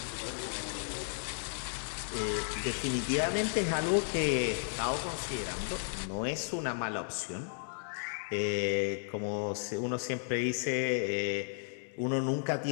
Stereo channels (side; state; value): right; silent; 55 dB below the other